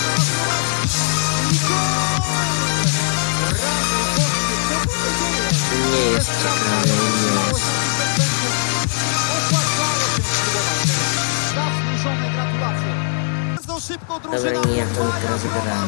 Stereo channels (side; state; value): right; silent; digital silence